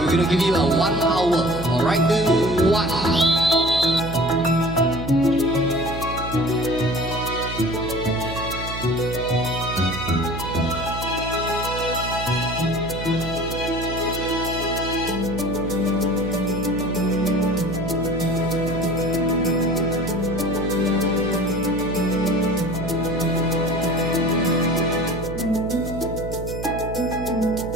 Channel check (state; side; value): noise; right; hum, 8 dB below the sound